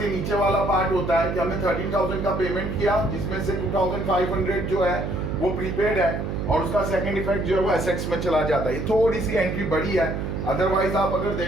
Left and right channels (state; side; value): noise; right; hum, 3 dB below the sound